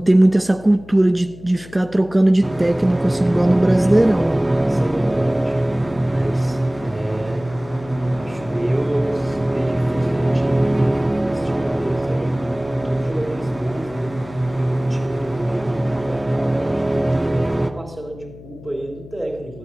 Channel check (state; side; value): noise; left; hum, 18 dB below the sound